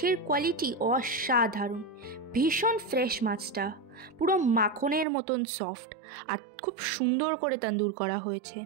কোয়ালিটি অসাধারণ। ভীষণ ফ্রেশ মাছটা, পুরো মাখনের মতন সফট, আর খুব সুন্দর করে তন্দুর করা হয়েছে।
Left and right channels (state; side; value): drops out; left; at 5.1 s